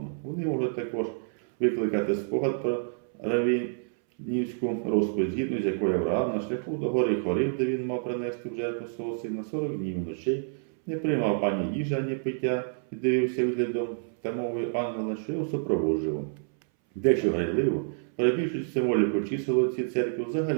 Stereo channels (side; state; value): left; silent; 59 dB below the other